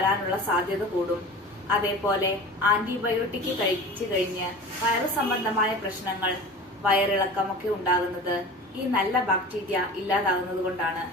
സാധ്യത കൂടും. അതേപോലെ ആന്റിബയോട്ടിക് കഴിച്ചു കഴിഞ്ഞ് വയറു സംബന്ധമായ പ്രശ്നങ്ങൾ, വയറിളക്കമൊക്കെ ഉണ്ടാകുന്നത് ഈ നല്ല ബാക്ടീരിയ ഇല്ലാതാകുന്നത് കൊണ്ടാണ്.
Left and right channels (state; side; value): normal; both; correlation 0.36